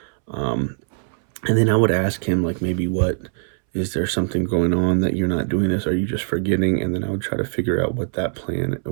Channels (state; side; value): silent; left; 64 dB below the other